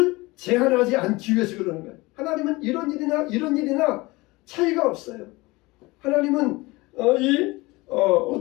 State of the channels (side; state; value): right; quieter; 22.3 dB